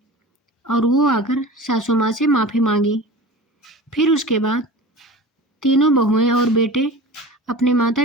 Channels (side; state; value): both; normal; correlation 0.36